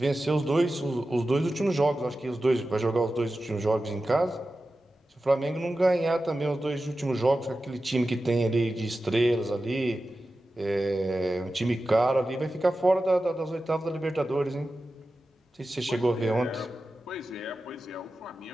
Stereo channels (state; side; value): normal; both; correlation 0.93